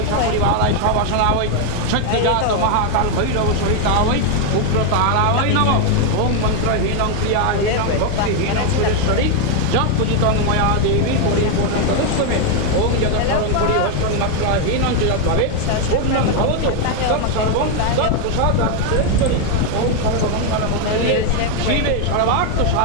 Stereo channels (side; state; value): both; different; correlation 0.01